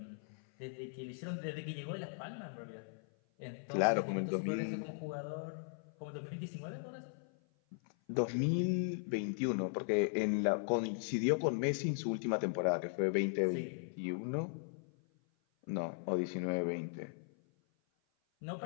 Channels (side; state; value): right; silent; 52 dB below the other